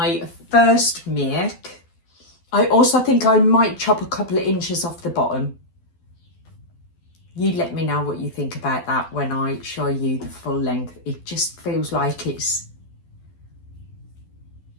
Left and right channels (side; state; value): right; late; 12 ms